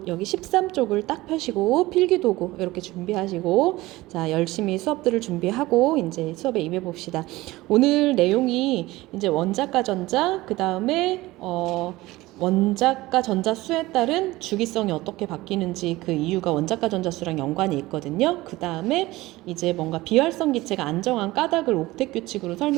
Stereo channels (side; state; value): left; quieter; 18.9 dB